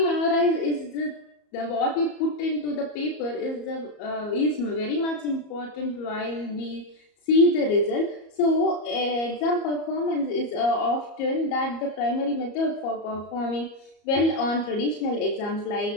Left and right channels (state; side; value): late; right; 34 ms